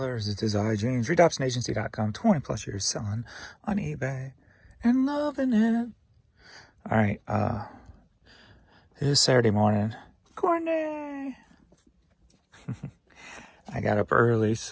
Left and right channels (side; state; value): both; identical; correlation 1.00